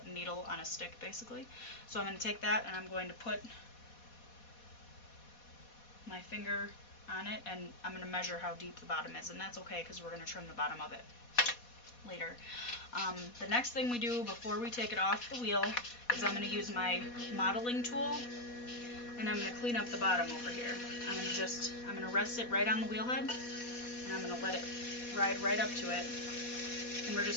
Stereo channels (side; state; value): right; late; 4.1 ms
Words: needle on a stick, basically. So I'm going to take that and I'm going to put my finger on it, and I'm going to measure how deep the bottom is, and that's okay because we're going to trim the bottom of it later. The next thing we do before we take it off the wheel is I'm going to use my modeling tool, and I'm going to clean up the bottom over here. I'm going to rest it right on the wheel head, and I'm going to let it ride right up to it. And we're